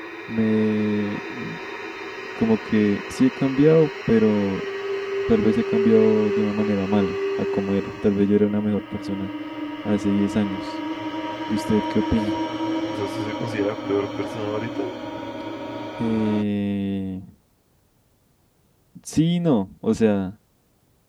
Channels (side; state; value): both; identical; correlation 1.00